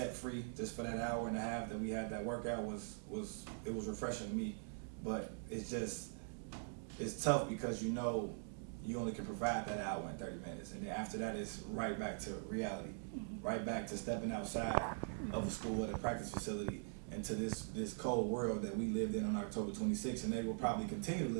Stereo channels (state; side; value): silent; left; digital silence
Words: free just for that hour and a half that we had that workout was refreshing to me. But it's tough, because you know you only can provide that hour and 30 minutes, and then after that it's right back to reality, right back to stepping outside of a school at a practice facility into this cold world that we lived in on October 26th, and they will probably continue to